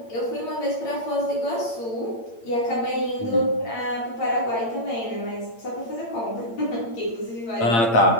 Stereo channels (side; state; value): right; late; 8.7 ms